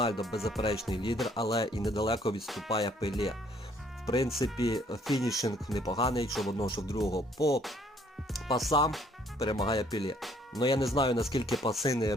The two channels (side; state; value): both; normal; correlation 0.63